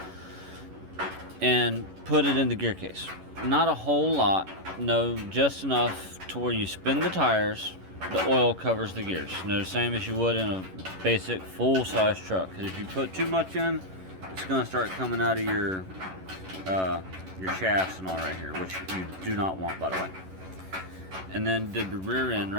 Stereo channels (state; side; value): late; left; 11 ms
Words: and put it in the gear case. Not a whole lot, no, just enough to where you spin the tires, the oil covers the gears. The same as you would in a basic full-size truck. Because if you put too much in, it's going to start coming out of your shafts and all right here, which you do not want, by the way. And then did the rear end